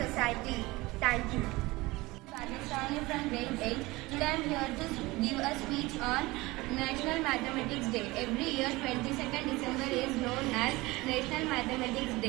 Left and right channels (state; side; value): quieter; left; 21.3 dB